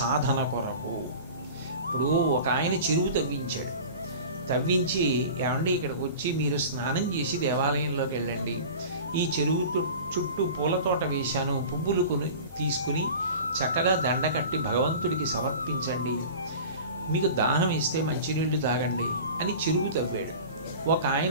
కొరకు. ఇప్పుడు ఒక ఆయన చెరువు తవ్వించాడు. తవ్వించి, ఏమండి ఇక్కడికి వచ్చి మీరు స్నానం చేసి దేవాలయంలోకి వెళ్ళండి, ఈ చెరువు చుట్టూ పూల తోట వేశాను, పువ్వులు తీసుకుని చక్కగా దండ కట్టి భగవంతుడికి సమర్పించండి, మీకు దాహం ఇస్తే మంచినీళ్లు తాగండి అని చెరువు తవ్వాడు. ఒక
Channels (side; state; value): both; inverted; correlation -0.37